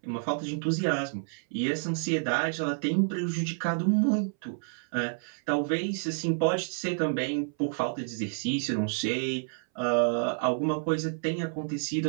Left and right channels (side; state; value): left; silent; 58 dB below the other